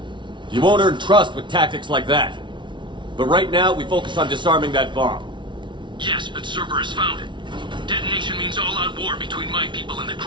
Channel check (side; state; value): left; late; 0.24 ms